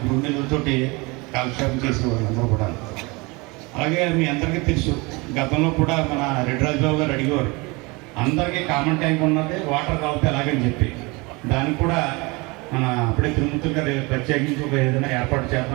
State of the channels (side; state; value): left; quieter; 25.9 dB